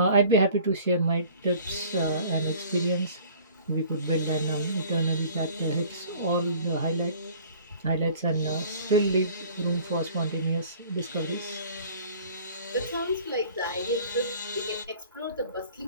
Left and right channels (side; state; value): both; inverted; correlation -0.49